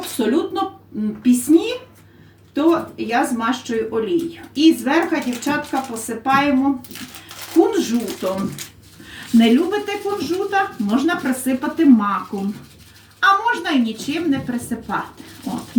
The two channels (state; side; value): identical; both; correlation 1.00